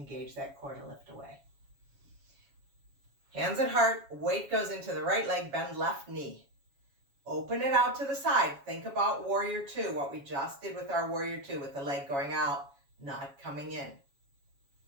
that core to lift away. Hands at heart, weight goes into the right leg, bend left knee. Open it out to the side. Think about warrior two, what we just did with our warrior two, with the leg going out, not coming in.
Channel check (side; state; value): left; late; 7.2 ms